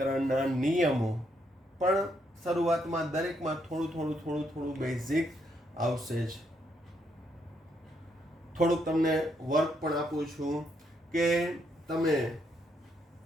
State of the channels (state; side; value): normal; both; correlation 0.75